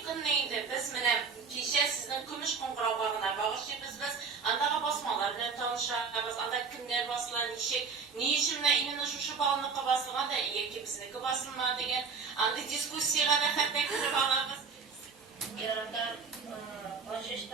günü indi biz mene kişiye sizin kümüş kongrabağına bağışlayız biz andağa basmalar bilen tanışırız, andağa kimler basılan işi, ne işimle inine şuşu bağlıqı basılgan da iyi ki bizniki basılma degen, anda diskussiyaya da hatta kırıp alırız. Yarandan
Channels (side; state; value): left; quieter; 5.4 dB